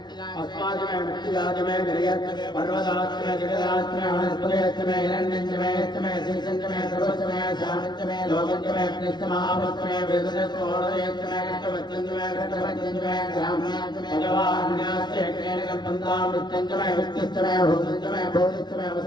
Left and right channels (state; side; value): late; right; 0.20 ms